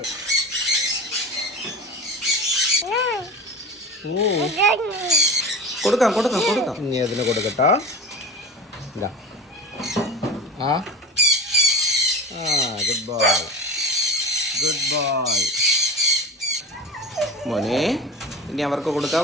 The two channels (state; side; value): normal; both; correlation 0.30